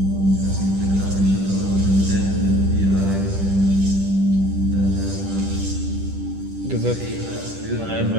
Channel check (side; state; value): left; late; 10 ms